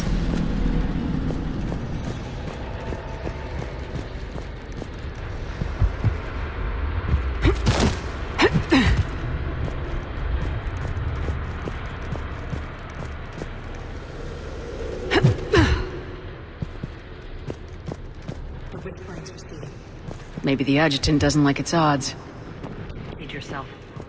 Maybe the adjutant doesn't like its odds. Feed yourself.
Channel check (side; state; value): both; identical; correlation 1.00